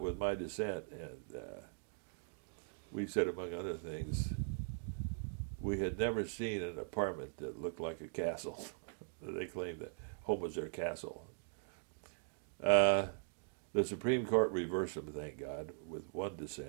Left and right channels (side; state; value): left; silent; digital silence